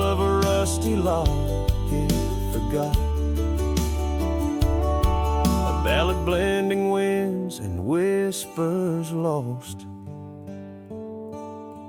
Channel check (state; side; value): identical; both; correlation 1.00